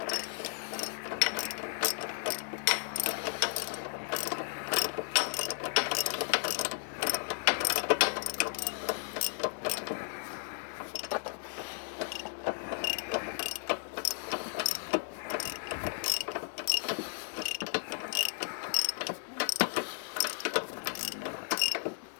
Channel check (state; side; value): silent; right; digital silence